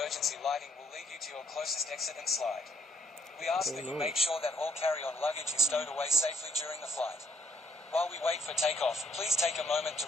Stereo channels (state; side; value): normal; both; correlation 0.69